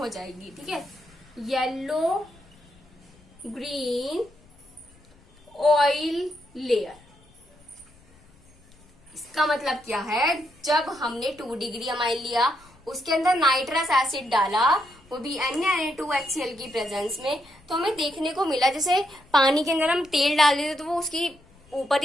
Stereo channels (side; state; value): left; noise; rumble, 28 dB below the sound